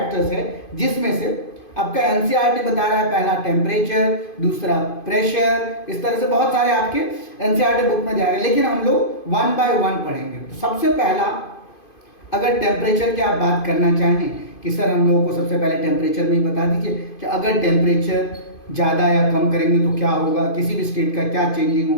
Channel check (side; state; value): right; late; 2.5 ms